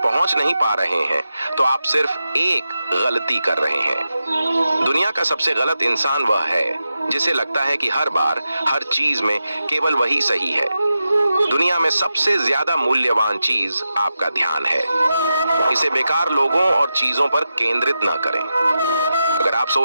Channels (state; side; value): inverted; both; correlation -0.90